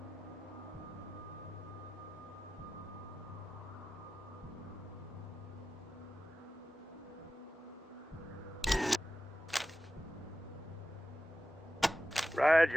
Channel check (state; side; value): normal; both; correlation 0.93